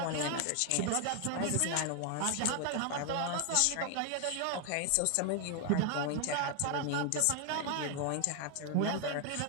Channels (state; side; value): different; both; correlation 0.00